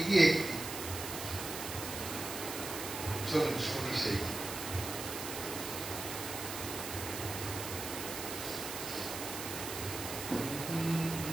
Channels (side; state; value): right; noise; hiss, 6 dB below the sound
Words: একটি। চলুন শুনি সেই গান।